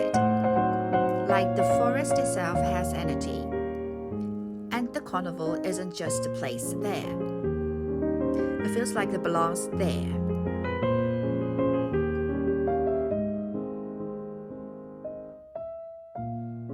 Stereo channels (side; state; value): both; identical; correlation 1.00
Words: Like the forest itself has energy. And the carnival isn't just a place there. It feels like it belongs there.